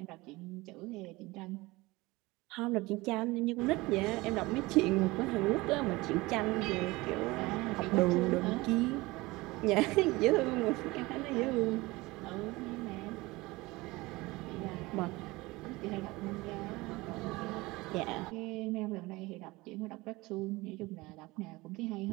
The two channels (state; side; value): quieter; left; 21.5 dB